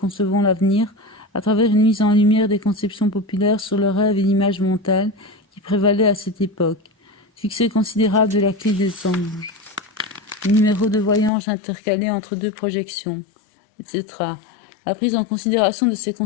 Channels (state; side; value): drops out; right; at 11.3 s